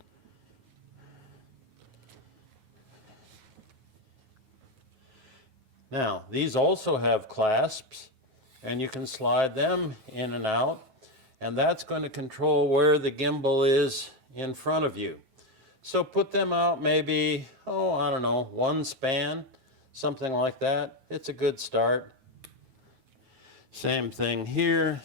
Now, these also have clasps, and you can slide them in and out, and that's going to control where the gimbal is in front of you. So put them out maybe, I don't know, 1 span, something like that. It's a good start. Same thing here,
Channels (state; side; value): late; left; 9.3 ms